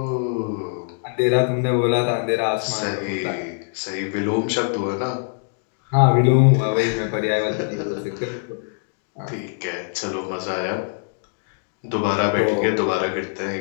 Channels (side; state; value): right; silent; digital silence